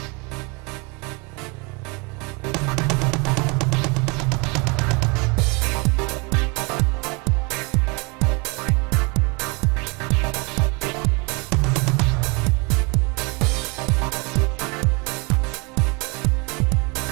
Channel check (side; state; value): left; quieter; 29.4 dB